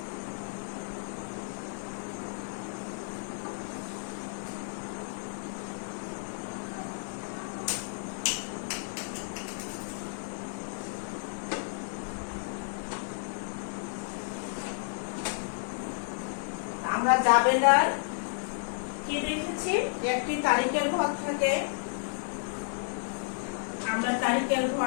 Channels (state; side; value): silent; right; 56 dB below the other